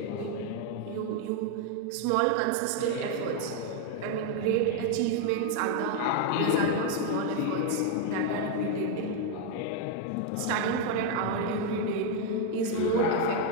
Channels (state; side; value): different; both; correlation 0.01